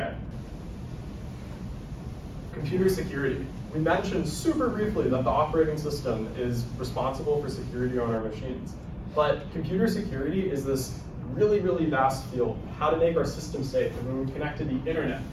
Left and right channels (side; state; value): both; identical; correlation 1.00